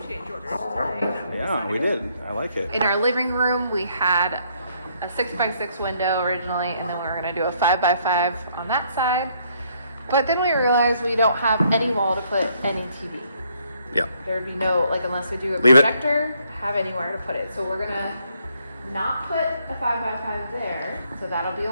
change orders today. Yeah, we did. I like it. In our living room, we had a 6x6 window originally, and then we were gonna do a 5x5 on that side. But then we realized we don't have any wall to put any TV. Yeah. There'd be no, like, unless we do a Leave it. projector, have anywhere to put it. So we're gonna not put a 5x5 there. So that'll be a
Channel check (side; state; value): both; inverted; correlation -0.69